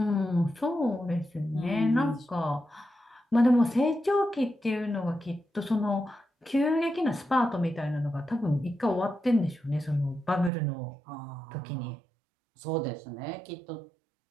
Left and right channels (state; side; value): drops out; left; at 10.5 s